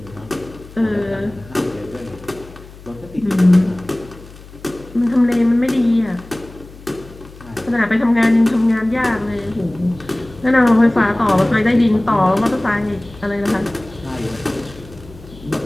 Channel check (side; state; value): left; noise; hum, 19 dB below the sound